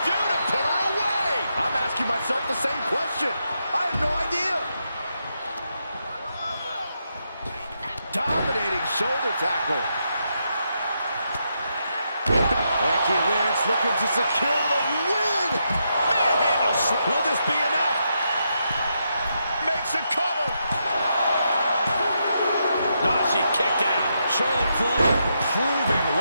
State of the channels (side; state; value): both; inverted; correlation -0.82